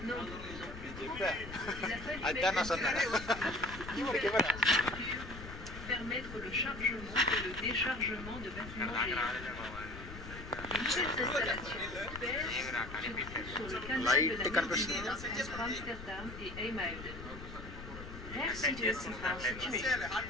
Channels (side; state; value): left; noise; rumble, 11 dB below the sound